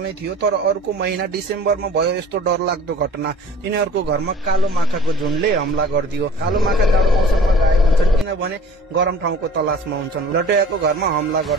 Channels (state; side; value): normal; both; correlation 0.47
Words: थियो, तर अर्को महिना डिसेम्बरमा भयो यस्तो डरलाग्दो घटना। तिनीहरूको घरमा कालो माखाको झुन्डले हमला गरिदियो। कालो माखा जाडो मौसममा गायब हुन्छन् किनभने गरम ठाउँको तलासमा हुन्छन्। लटोयाको घरमा हमला